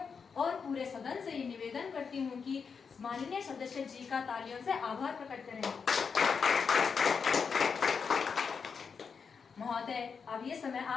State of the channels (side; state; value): right; quieter; 5.8 dB